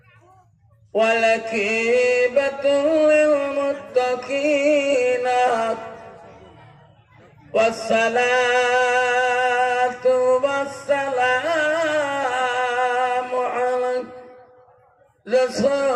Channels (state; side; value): identical; both; correlation 1.00